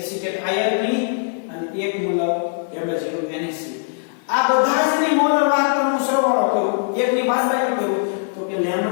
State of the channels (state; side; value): silent; right; 63 dB below the other